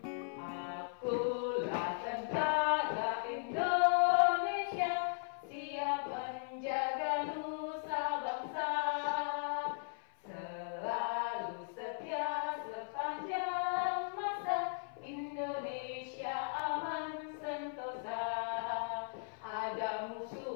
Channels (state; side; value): silent; right; 53 dB below the other